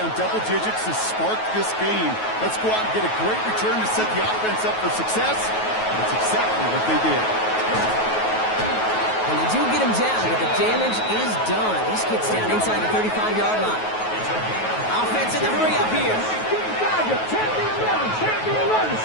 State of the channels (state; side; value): late; right; 9.3 ms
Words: double digits to spark this game. Let's go out and get a great return to set the offense up for success. That's exactly what they did. And they do get him down, but the damage is done. This kid's down inside the 35-yard line. Offense in the hurry up here.